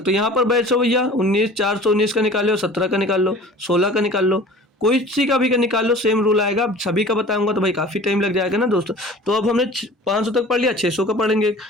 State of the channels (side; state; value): both; normal; correlation 0.44